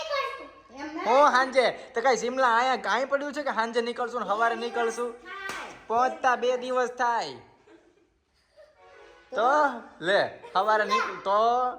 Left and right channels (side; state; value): both; identical; correlation 1.00